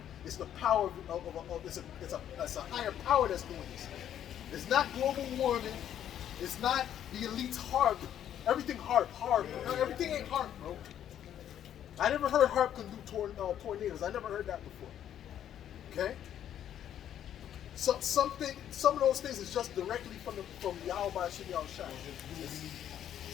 it's the power it's a higher power that's doing this. It's not global warming. It's not the elite's HARP. Everything HARP. No, everything ain't HARP, bro. I never heard HARP can do tornadoes. I never heard that before. Okay? So some of those things is just directly from Yahweh Shinal Shah.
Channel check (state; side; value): quieter; right; 10.4 dB